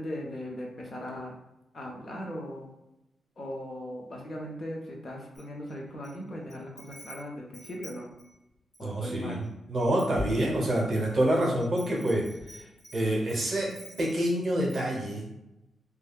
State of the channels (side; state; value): both; normal; correlation 0.85